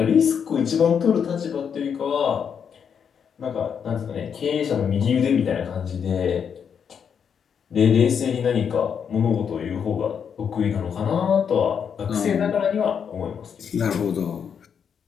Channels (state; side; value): quieter; right; 7.3 dB